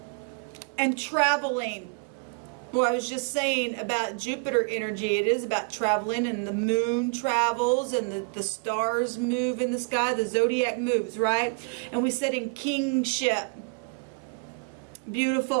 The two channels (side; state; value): left; quieter; 36.4 dB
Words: And traveling. Well, I was just saying about Jupiter energy. It is about traveling, and the moon travels, and the stars move in the sky. The zodiac moves, right? And we said in kingship.